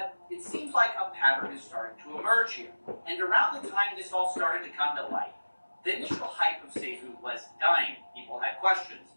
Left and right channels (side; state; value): both; inverted; correlation -1.00